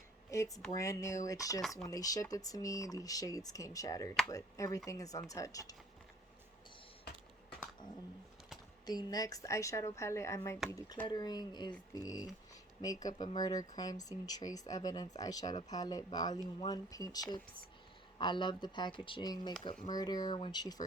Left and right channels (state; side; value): normal; both; correlation 0.55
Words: It's brand new. It's just when they shipped it to me, these shades came shattered, but everything is untouched. The next eyeshadow palette I might be decluttering is the Makeup and Murder Crime Scene Trace Evidence Eyeshadow Palette Volume 1 Paint Chips. I love the packaging. Makeup Murder, when she